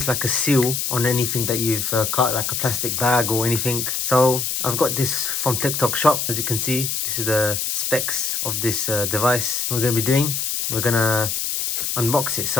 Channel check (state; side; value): noise; left; hiss, 1 dB below the sound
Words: like a seal on anything that you've cut, like a plastic bag or anything. So I've got this from TikTok shop. As you can see, this is the specs of this device we're going to be doing. We're going to unbox it.